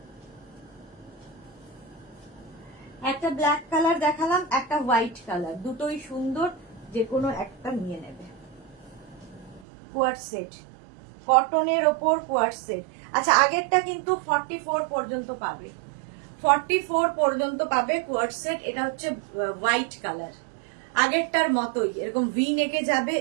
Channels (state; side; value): drops out; left; at 9.6 s